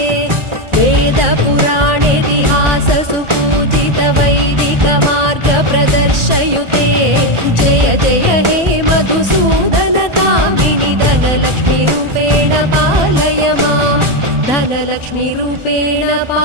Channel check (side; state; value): left; late; 1.4 ms